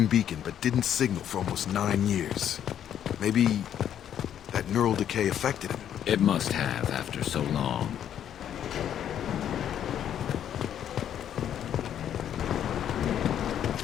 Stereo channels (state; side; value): quieter; right; 9.9 dB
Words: beacon, but didn't signal for almost 9 years. Maybe that neural decay affected him. It must have after so long.